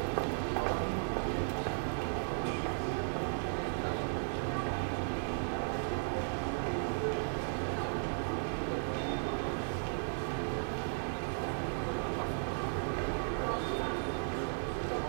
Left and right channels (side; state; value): left; silent; digital silence